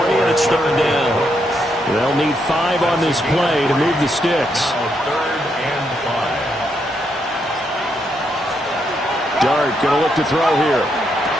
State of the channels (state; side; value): normal; both; correlation 0.78